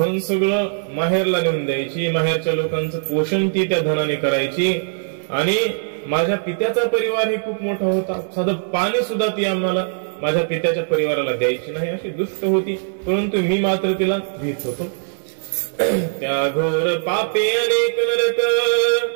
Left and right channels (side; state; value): left; silent; digital silence